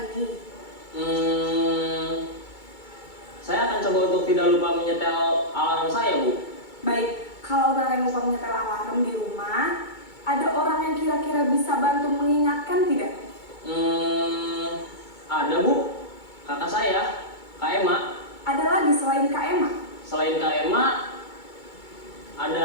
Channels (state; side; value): late; right; 2.2 ms